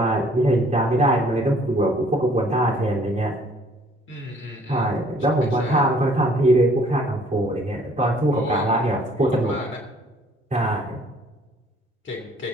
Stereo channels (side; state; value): both; normal; correlation 0.59